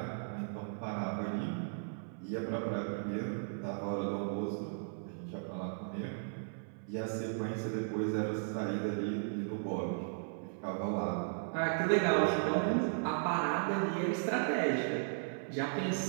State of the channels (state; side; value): silent; left; 54 dB below the other